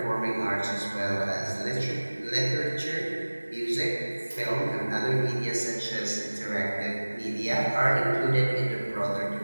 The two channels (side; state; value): both; inverted; correlation -1.00